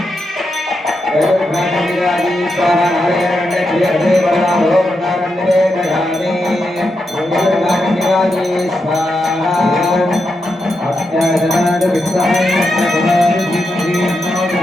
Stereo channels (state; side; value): normal; both; correlation 0.85